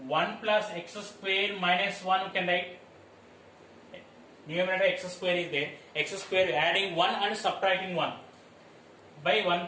1 plus x square minus 1 you can write. Numerator x square is there. X square adding 1 and subtracting 1 by 1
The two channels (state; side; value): identical; both; correlation 1.00